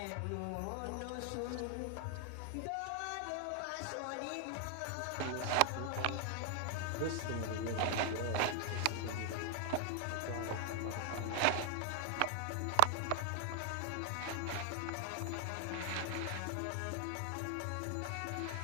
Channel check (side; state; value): both; different; correlation 0.00